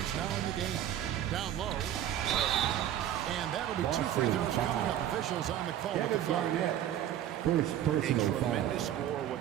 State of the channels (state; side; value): quieter; left; 11.3 dB